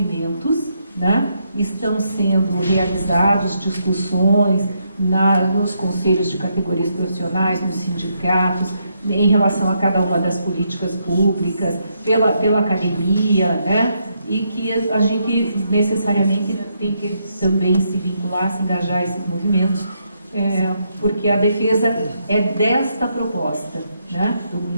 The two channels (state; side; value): inverted; both; correlation -0.78